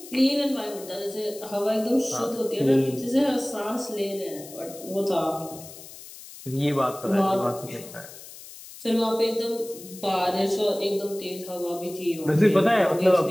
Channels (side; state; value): left; noise; hiss, 16 dB below the sound